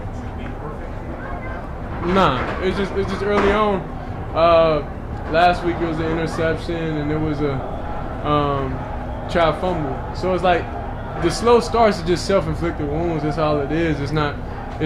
to be perfect? Nah, it's just early on. Last week it was an interception and there was a trap fumble. So it's like the slow starts are just self-inflicted wounds. That's all it is. It's not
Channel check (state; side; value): identical; both; correlation 1.00